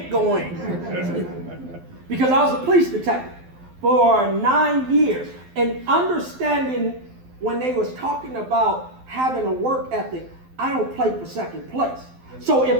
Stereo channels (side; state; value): left; late; 12 ms